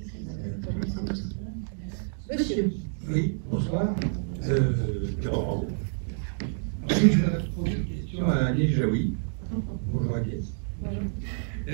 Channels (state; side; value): silent; left; digital silence